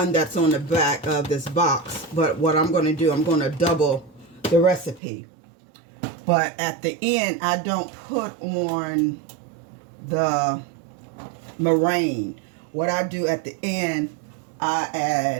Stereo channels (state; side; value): drops out; left; at 5.0 s